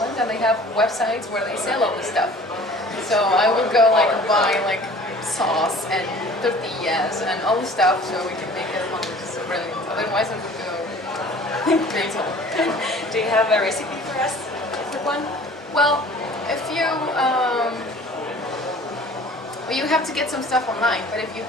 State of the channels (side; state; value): both; normal; correlation 0.48